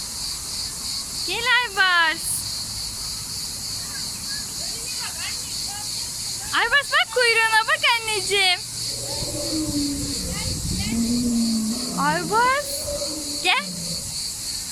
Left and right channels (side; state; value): both; identical; correlation 1.00